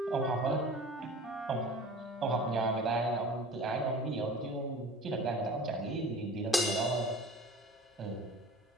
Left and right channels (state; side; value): normal; both; correlation 0.40